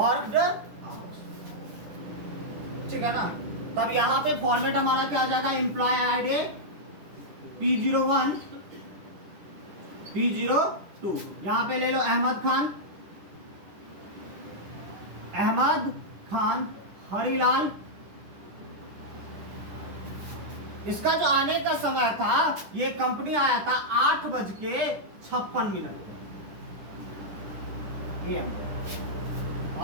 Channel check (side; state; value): left; late; 10 ms